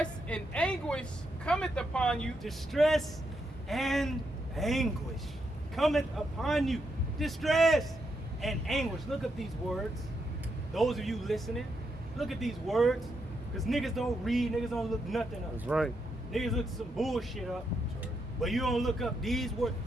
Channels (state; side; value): normal; both; correlation 0.81